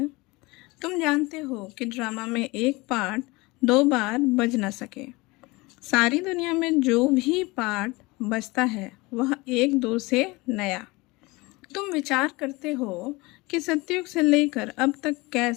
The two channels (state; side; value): quieter; right; 23.5 dB